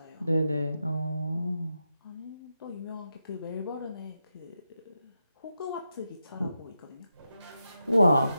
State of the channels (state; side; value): inverted; both; correlation -0.87